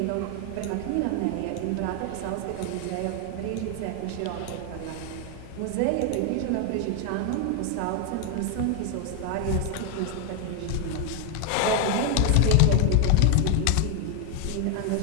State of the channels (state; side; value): different; both; correlation 0.00